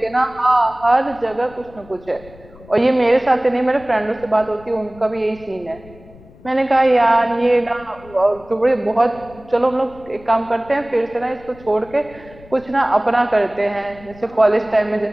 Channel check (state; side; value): noise; left; rumble, 22 dB below the sound